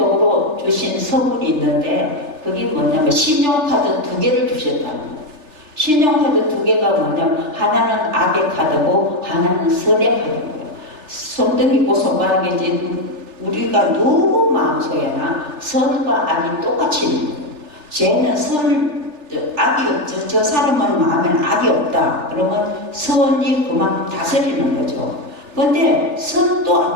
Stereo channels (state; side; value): late; left; 3.3 ms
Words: 주신 선물이 있는데 그게 뭐냐면 신용카드 2개를 주셨다는 거예요. 신용카드 2개가 뭐냐면 하나는 악의 카드고 하나는 선의 카드예요. 손등 있고 손바닥이지 우리가 누구 마음속에나 선과 악이 똑같이 있는 거예요. 죄는 악이 없죠. 저 사람은 마음에는 악이 없다. 그러면 선이 그만큼 다스리는 거죠. 그런데 선도